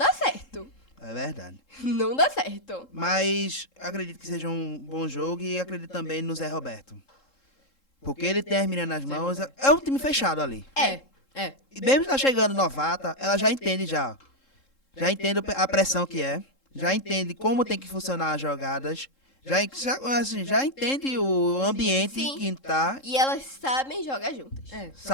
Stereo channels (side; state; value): right; late; 3.7 ms